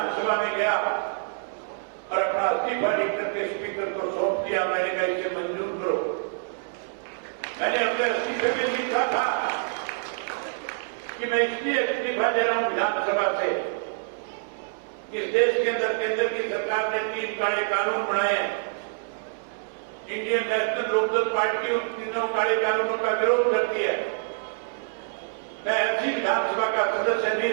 में गया और अपना इस्तीफा लिख करके स्पीकर को सौंप दिया। मैंने कहा इसे मंजूर करो। मैंने अपने इस्तीफे में लिखा था कि मैं इसलिए इस्तीफा दे रहा हूं विधानसभा से, इस देश के अंदर केंद्र की सरकार ने 3 काले कानून बनाए हैं। इंडियन नेशनल लोकदल पार्टी उन 3 काले कानूनों का विरोध करती है। मैं ऐसी विधानसभा का सदस्य नहीं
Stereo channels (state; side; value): silent; left; 61 dB below the other